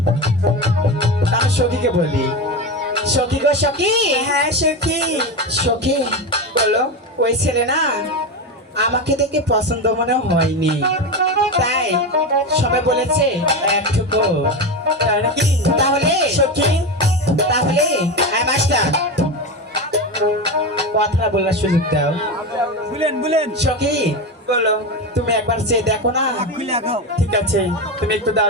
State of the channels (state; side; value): normal; both; correlation 0.18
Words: আমি সখীকে বলি সখী গো সখী হ্যাঁ সখী সখী বলো ওই ছেলে না আমাকে দেখে পছন্দ মনে হয়নি তাই সবাই বলেছে একটুকু। তাই নাকি তাহলে সখী তাহলে মাস্টার কথা বলার সুযোগ দাও। বুলেন সখী বলো তুমি একবার চেয়ে দেখো না। ঠিক আছে তুমি একটু